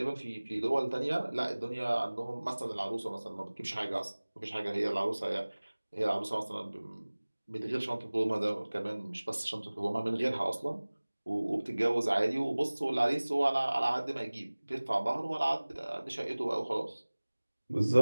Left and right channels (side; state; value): both; inverted; correlation -1.00